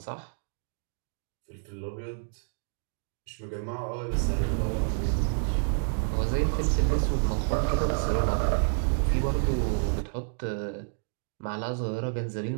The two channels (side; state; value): left; silent; digital silence